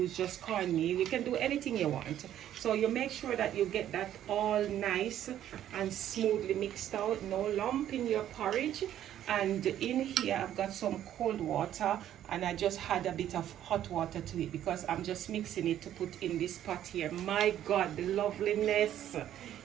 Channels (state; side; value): quieter; left; 11.4 dB